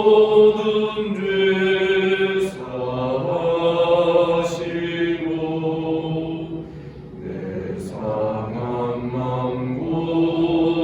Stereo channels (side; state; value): both; identical; correlation 1.00